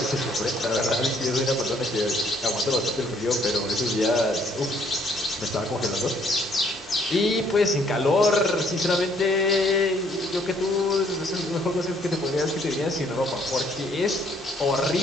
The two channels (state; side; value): normal; both; correlation 0.65